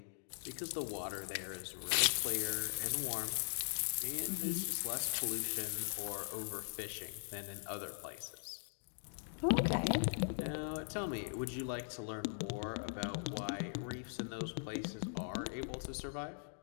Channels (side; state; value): right; silent; digital silence